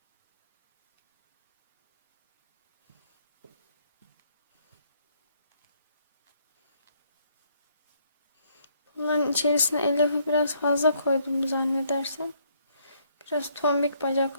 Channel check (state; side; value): inverted; both; correlation -0.69